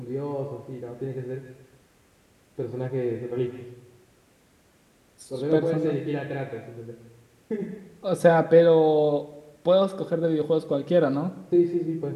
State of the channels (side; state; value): both; identical; correlation 1.00